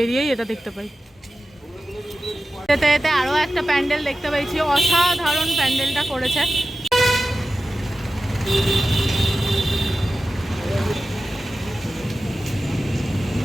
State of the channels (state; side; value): normal; both; correlation 0.94